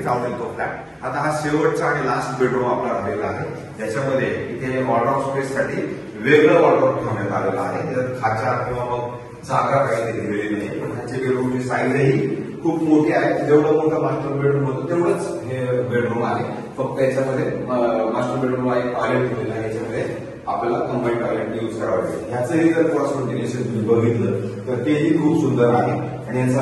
आवडेल तो फ्लॅट. आता हा शेवटचा आणि लास्ट बेडरूम आपला राहिलेला आहे. ज्याच्यामध्ये इथे वॉर्डरोब स्पेस साठी वेगळं वॉर्डरोब ठेवण्यात आलेलं आहे. त्याच्यात खाचा किंवा मग जागा काही दिलेली नाही. पण ह्याची बेडरूमची साईजही खूप मोठी आहे. जेवढं मोठं मास्टर बेडरूम होतं तेवढंच हे बेडरूम आहे. फक्त याच्यामध्ये मास्टर बेडरूम आहे, टॉयलेट दिलेलं आहे. याच्यामध्ये आपल्याला कंबाईन टॉयलेट यूज करावं लागेल. ह्याचंही जर क्रॉस व्हेंटिलेशन तुम्ही बघितलं तर तेही खूप सुंदर आहे आणि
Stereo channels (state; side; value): identical; both; correlation 1.00